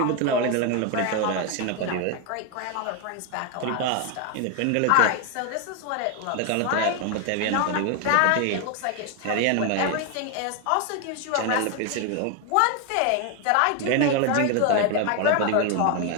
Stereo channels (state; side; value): different; both; correlation 0.01